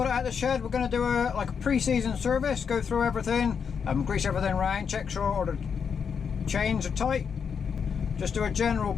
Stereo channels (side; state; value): right; quieter; 6.6 dB